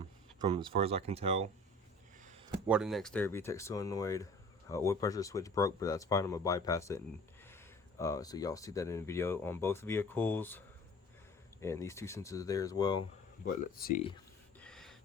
as far as I can tell. Water next there, VTEC solenoid. Oil pressure switch broke, but that's fine. I'm gonna bypass it, and so y'all see that in the video on both vehicles. And these two sensors are there as well. But let's see.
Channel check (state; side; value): normal; both; correlation 0.46